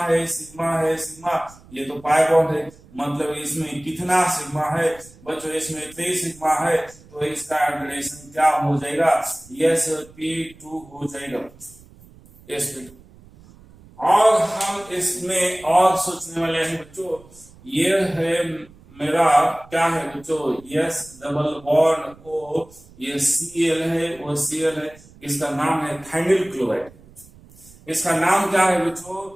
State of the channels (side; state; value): right; noise; rumble, 24 dB below the sound